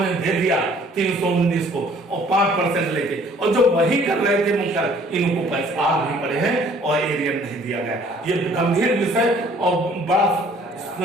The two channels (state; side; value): normal; both; correlation 0.57